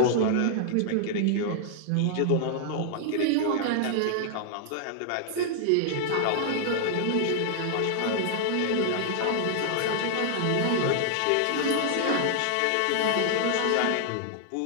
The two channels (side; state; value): both; different; correlation -0.01